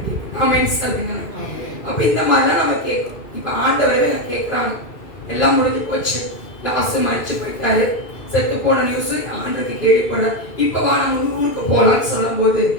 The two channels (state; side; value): late; right; 2.4 ms